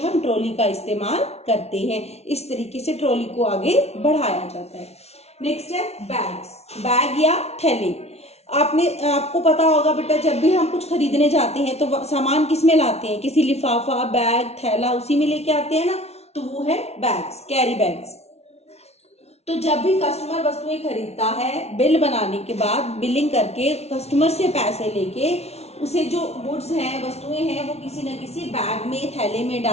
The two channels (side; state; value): right; late; 0.31 ms